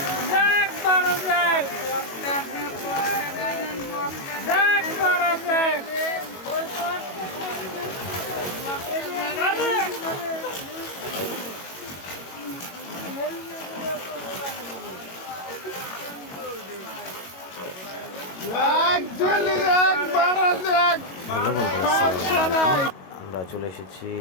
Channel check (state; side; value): late; right; 21 ms